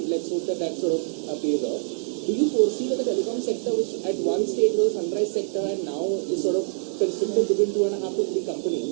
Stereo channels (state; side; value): silent; left; digital silence